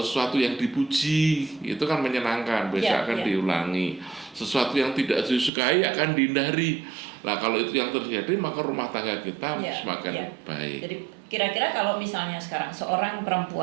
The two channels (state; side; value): drops out; left; at 5.5 s